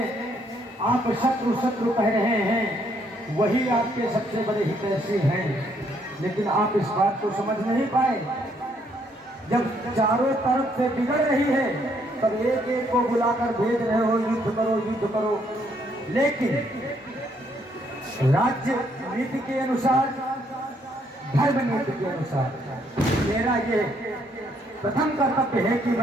आप शत्रु शत्रु कह रहे हैं, वही आपके सबसे बड़े हितैषी हैं, लेकिन आप इस बात को समझ नहीं पाए। जब चारों तरफ से बिगड़ रही है, तब एक एक को बुलाकर भेज रहे हो, युद्ध करो युद्ध करो। लेकिन राज्य नीति के अनुसार, धर्म नीति के अनुसार मेरा ये प्रथम कर्तव्य है कि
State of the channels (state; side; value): normal; both; correlation 0.70